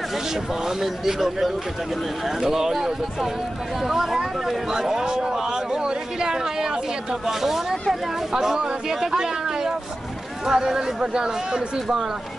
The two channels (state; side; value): normal; both; correlation 0.94